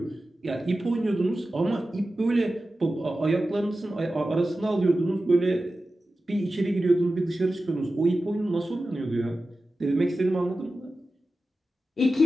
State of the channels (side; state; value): both; normal; correlation 0.94